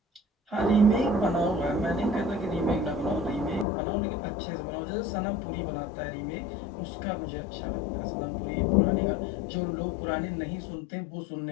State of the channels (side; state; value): right; drops out; at 3.7 s